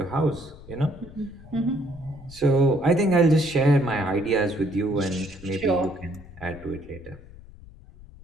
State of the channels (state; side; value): noise; left; rumble, 20 dB below the sound